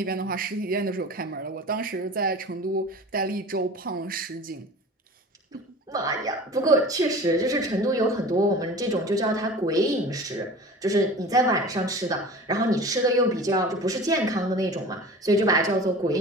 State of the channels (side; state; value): both; normal; correlation 0.39